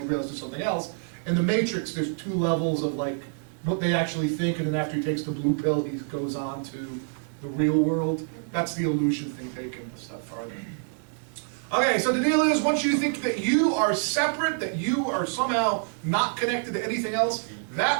he realizes there's something else. In The Matrix, there's two levels of like what they actually think, and then after he takes the blue pill, he goes on to the real world. That's the illusion thing taken a step farther. Okay, so the deal is, once you think that you are separate, that you are somehow not connected to anything else,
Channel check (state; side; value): silent; left; digital silence